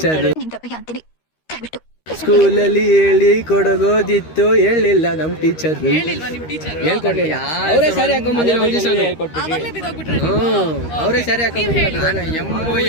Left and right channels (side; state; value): right; late; 13 ms